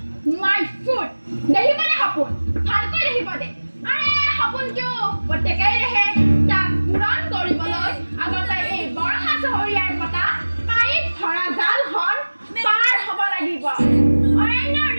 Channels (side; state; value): both; inverted; correlation -1.00